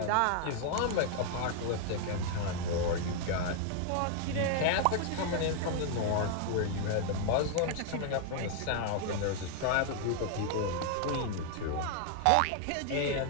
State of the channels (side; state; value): both; different; correlation 0.00